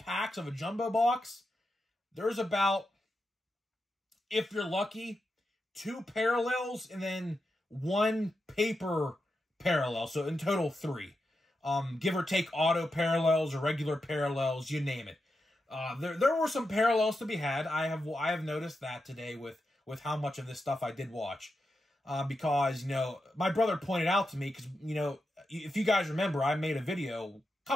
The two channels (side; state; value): both; normal; correlation 0.88